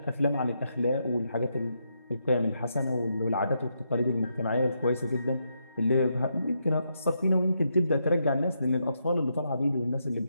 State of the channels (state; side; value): inverted; both; correlation -0.81